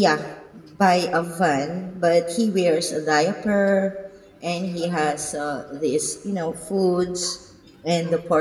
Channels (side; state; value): both; identical; correlation 1.00